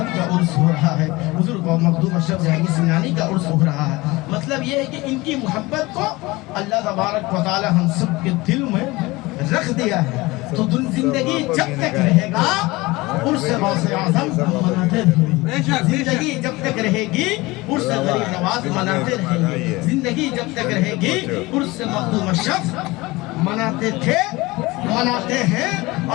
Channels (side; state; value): right; quieter; 21.6 dB